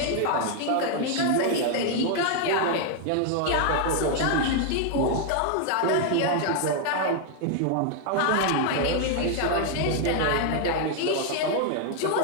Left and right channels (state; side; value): different; both; correlation 0.00